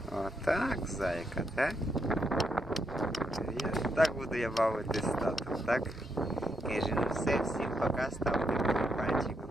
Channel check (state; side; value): normal; both; correlation 0.79